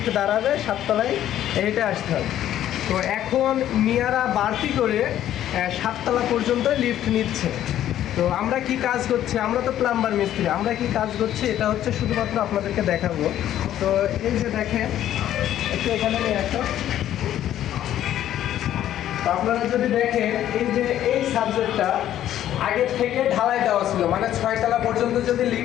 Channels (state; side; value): quieter; right; 11.9 dB